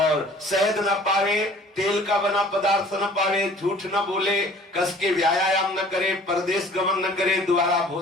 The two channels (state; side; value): normal; both; correlation 0.50